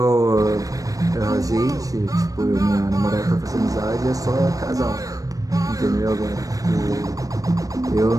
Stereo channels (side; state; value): left; late; 0.17 ms